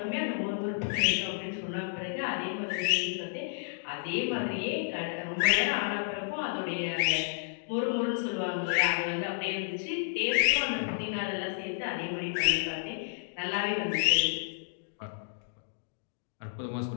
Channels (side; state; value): right; silent; digital silence